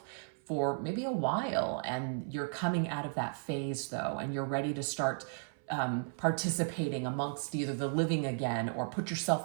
for maybe a while, and you're coming out of that phase though, and you're ready to start participating amongst either the living again or put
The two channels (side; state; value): left; silent; 55 dB below the other